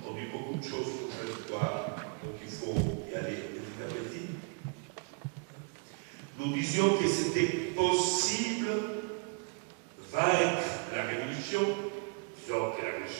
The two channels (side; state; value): left; quieter; 35.5 dB